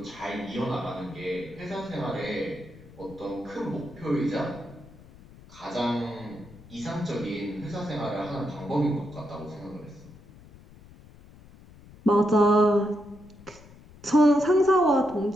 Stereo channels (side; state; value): left; noise; rumble, 22 dB below the sound